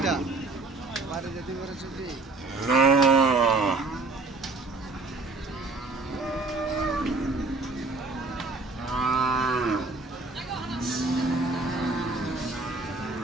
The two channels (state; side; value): quieter; left; 3.4 dB